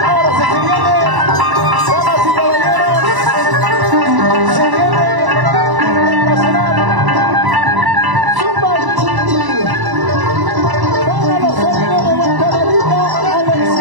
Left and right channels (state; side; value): late; left; 1.0 ms